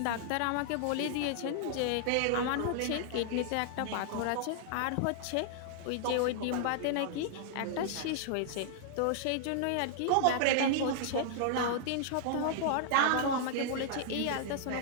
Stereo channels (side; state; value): both; different; correlation -0.01